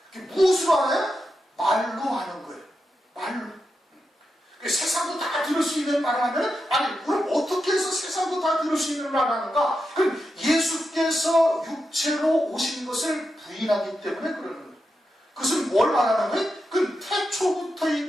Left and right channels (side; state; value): both; normal; correlation 0.87